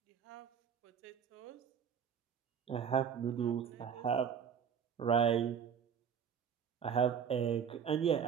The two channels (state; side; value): quieter; left; 7.6 dB